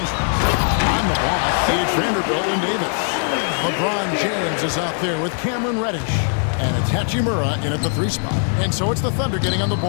On the block, it's Vanderbilt and Davis. LeBron James is out there with Cameron Reddish. And it's Hachimura in at the 3 spot. And so it's the Thunder getting on the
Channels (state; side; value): silent; right; 55 dB below the other